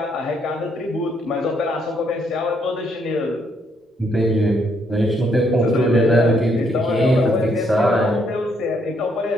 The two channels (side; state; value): both; normal; correlation 0.72